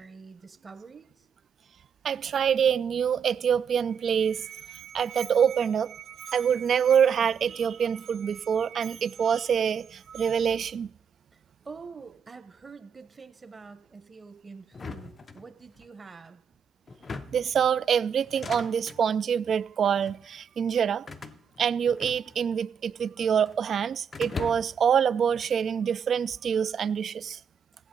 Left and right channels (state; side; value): quieter; left; 7.3 dB